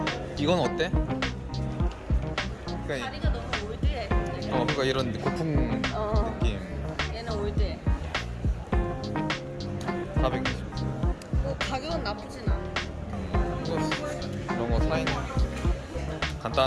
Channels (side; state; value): both; identical; correlation 1.00